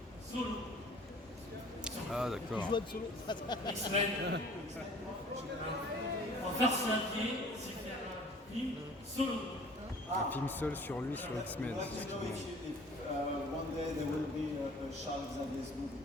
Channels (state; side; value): normal; both; correlation 0.49